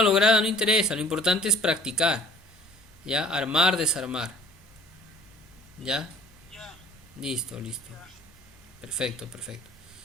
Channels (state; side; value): normal; both; correlation 0.52